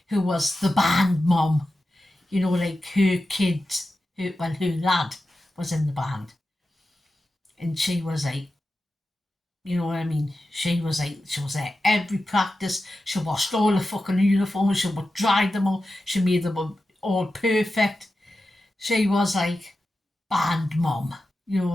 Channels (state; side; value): normal; both; correlation 0.92